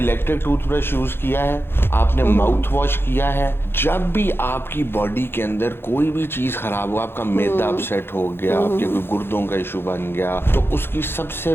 टूथब्रश यूज किया है, आपने माउथ वॉश किया है। जब भी आपकी बॉडी के अंदर कोई भी चीज खराब हो, आपका मैदा अपसेट हो गया, आपके कोई गुर्दों का इशू बन गया, तो उसकी सबसे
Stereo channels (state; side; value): late; right; 0.11 ms